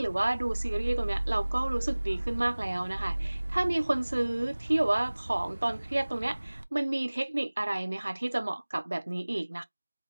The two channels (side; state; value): both; inverted; correlation -1.00